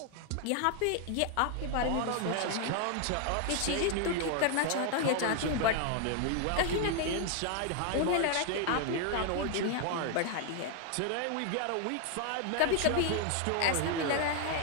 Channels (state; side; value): different; both; correlation 0.00